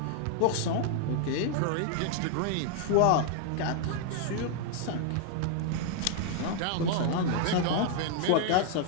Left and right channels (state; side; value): different; both; correlation 0.00